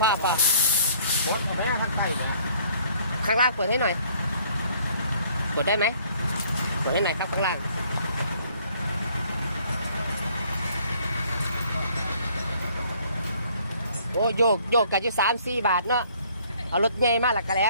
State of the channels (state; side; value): inverted; both; correlation -0.60